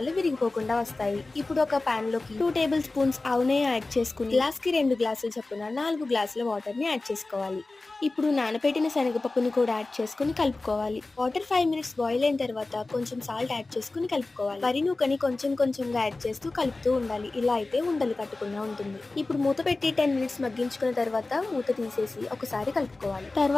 విరిగిపోకుండా వస్తాయి. ఇప్పుడు ఒక పాన్ లోకి 2 టేబుల్ స్పూన్స్ ఆవు నెయ్యి యాడ్ చేసుకుని గ్లాస్కి 2 గ్లాసుల చొప్పున 4 గ్లాసుల వాటర్ ని యాడ్ చేసుకోవాలి. ఇప్పుడు నానబెట్టిన శనగపప్పుని కూడా యాడ్ చేసుకుని కలుపుకోవాలి. వాటర్ 5 మినిట్స్ బాయిల్ అయిన తర్వాత కొంచెం సాల్ట్ యాడ్ చేసుకుని కలుపుకోవాలి. వరి నూకని కొంచెం కొంచెంగా యాడ్ చేస్తూ కలుపుతూ ఉండాలి. ఇలా అయితే ఉండలు కట్టకుండా ఉంటుంది. ఇప్పుడు మూత పెట్టి 10 మినిట్స్ మగ్గించుకున్న తర్వాత మూత తీసేసి ఒకసారి కలుపుకోవాలి.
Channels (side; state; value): right; quieter; 3.3 dB